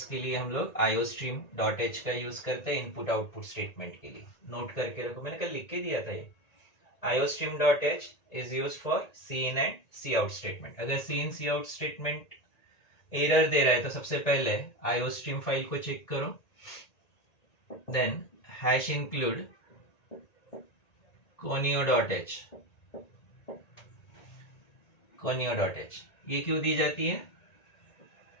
के लिए हम लोग iostream.h का यूज करते हैं इनपुट आउटपुट स्टेटमेंट के लिए। नोट करके रखो, मैंने कल लिख के दिया था ये। iostream.h is used for cin and cout statement. अगर cin cout स्टेटमेंट एरर दे रहा है तो सबसे पहले iostream फाइल को चेक करो, then hash include conio.h, conio.h ये क्यों दी जाती है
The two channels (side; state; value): right; late; 1.9 ms